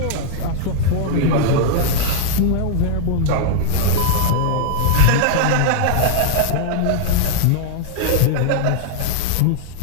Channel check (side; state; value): both; different; correlation -0.01